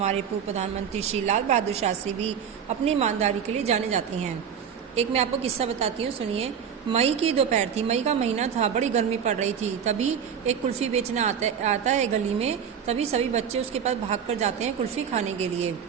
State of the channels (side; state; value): left; quieter; 7.8 dB